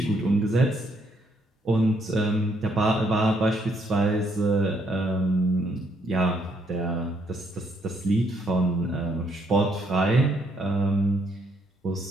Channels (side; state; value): both; normal; correlation 0.71